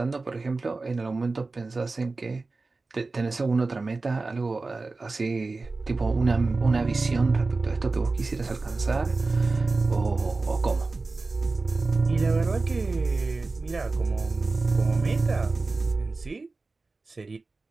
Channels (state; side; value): quieter; left; 3.6 dB